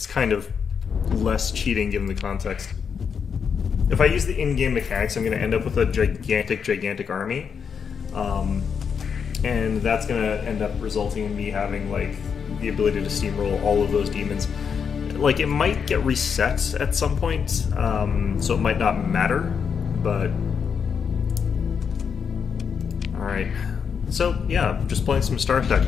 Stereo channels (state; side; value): quieter; right; 6.6 dB